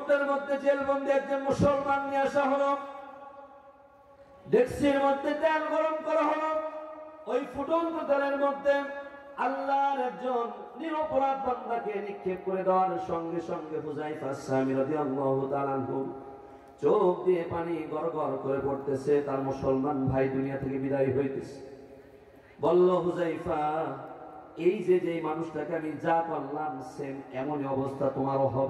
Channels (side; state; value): both; identical; correlation 1.00